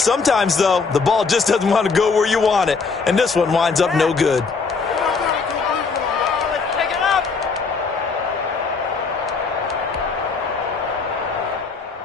though, the ball just doesn't want to go where you want it. And this one winds up no good.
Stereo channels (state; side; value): quieter; right; 4.8 dB